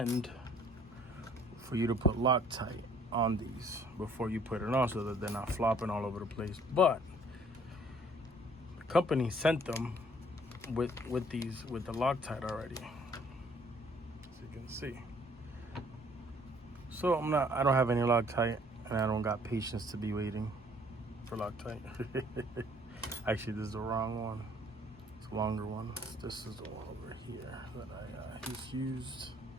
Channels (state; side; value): normal; both; correlation 0.59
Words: for you to put Loctite on these before you put it on, so that they're not flopping all over the place. But the company sent them with the Loctite already, as you can see. So I don't have any Loctite, and I don't got patience to be waiting for Loctite. Actually, this is the wrong one. It's a longer one. This is the one over here that I just used